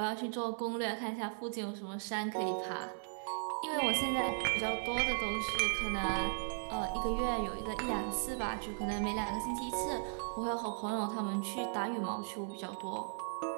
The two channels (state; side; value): silent; left; digital silence